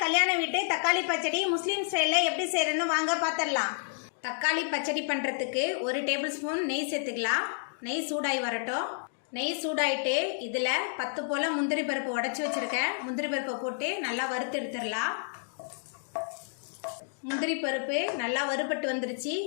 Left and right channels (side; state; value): right; silent; digital silence